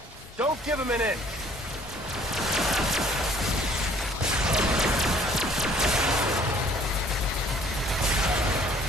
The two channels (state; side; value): normal; both; correlation 0.57